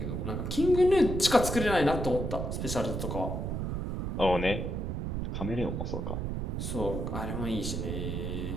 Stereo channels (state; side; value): noise; right; rumble, 2 dB below the sound